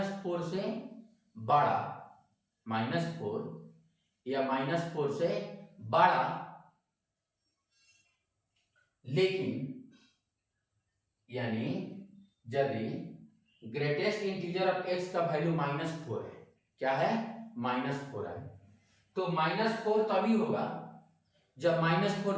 से बड़ा, -4 या -4 से बड़ा, लेकिन यानी यदि ग्रेटेस्ट इंटीजर ऑफ x का वैल्यू -4 है, क्या है, -4 है, तो -4 तभी होगा जब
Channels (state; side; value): identical; both; correlation 1.00